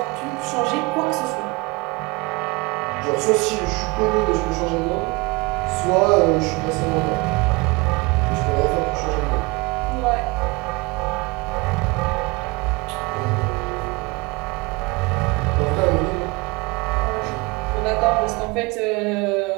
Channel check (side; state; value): left; quieter; 25.7 dB